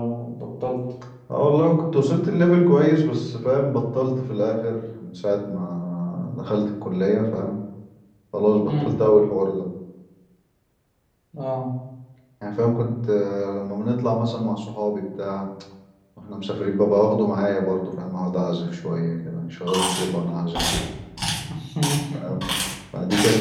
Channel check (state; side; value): identical; both; correlation 1.00